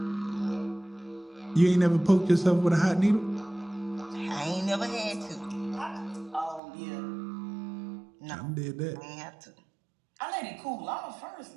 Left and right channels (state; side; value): drops out; left; at 6.6 s